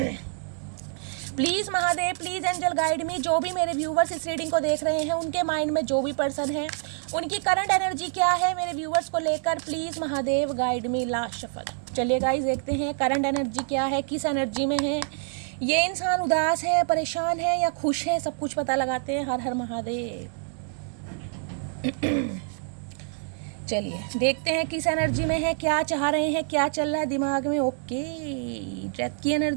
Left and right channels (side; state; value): left; silent; 60 dB below the other